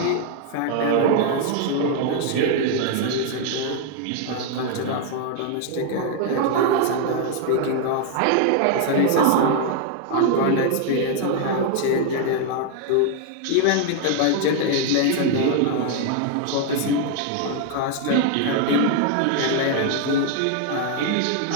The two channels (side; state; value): both; different; correlation 0.00